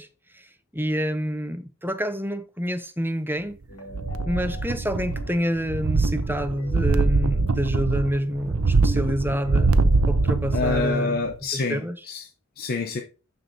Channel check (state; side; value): normal; both; correlation 0.77